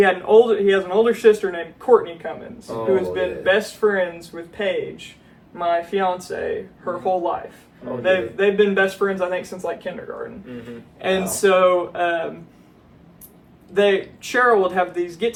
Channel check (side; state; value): both; identical; correlation 1.00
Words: older sister named Courtney Cummins, who has been best friends with Paige, my fiance, her whole life. They've been best friends, I think, since like kindergarten. And so Cheryl would have these